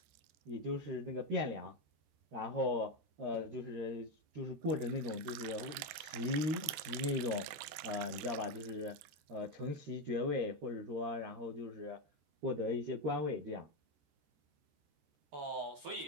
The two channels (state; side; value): late; left; 14 ms